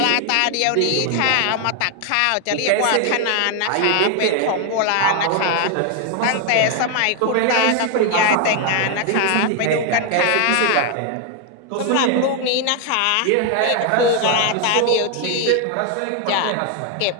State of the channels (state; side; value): different; both; correlation 0.01